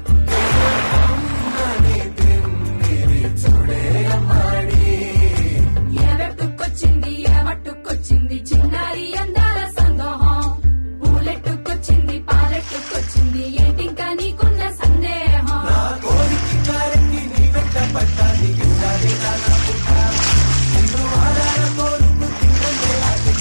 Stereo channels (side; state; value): both; inverted; correlation -1.00